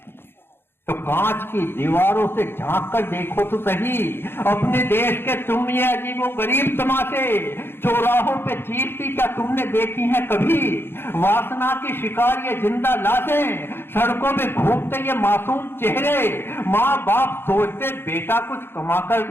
तो कांच की दीवारों से झांक कर देखो तो सही अपने देश के तुम ये अजीबो गरीब तमाशे। चौराहों पे चीरती क्या तुमने देखी है कभी? वासना की शिकार ये जिंदा लाशें, सड़कों में घूमते ये मासूम चेहरे। माँ बाप सोचते बेटा कुछ कमा कर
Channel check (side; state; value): right; late; 0.11 ms